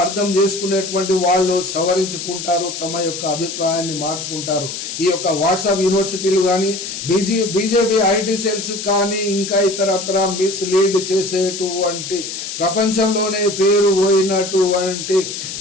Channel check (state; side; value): noise; left; hiss, 7 dB below the sound